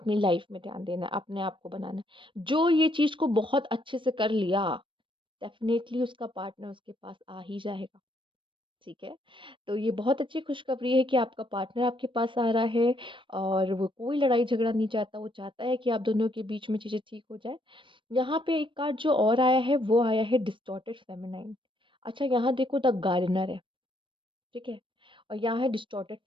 लाइफ में ध्यान देना है, अपने आप को बनाना है। जो ये चीज को बहुत अच्छे से कर लिया, डेफिनेटली उसका पार्टनर उसके पास आ ही जाएगा। ठीक है, तो ये बहुत अच्छी खुशखबरी है कि आपका पार्टनर आपके पास आ रहा है और वो कोई लड़ाई झगड़ा नहीं चाहता, वो चाहता है कि आप दोनों के बीच में चीजें ठीक हो जाए। यहाँ पे एक कार्ड जो और आया है वो आया है डिस्टॉर्टेड फेमिनाइन। अच्छा, यहाँ देखो द गार्डनर है। ठीक है, और यहाँ है डिस्टॉर्टेड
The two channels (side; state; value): left; late; 0.24 ms